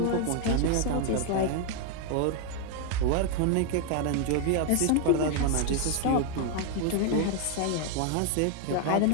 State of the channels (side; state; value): both; different; correlation 0.01